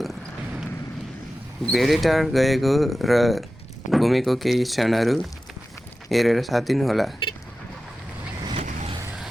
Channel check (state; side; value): normal; both; correlation 0.94